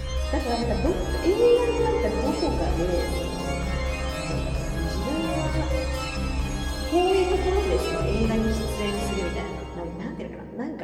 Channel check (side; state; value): both; identical; correlation 1.00